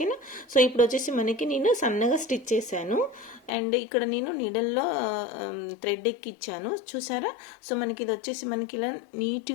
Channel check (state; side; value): drops out; right; at 3.5 s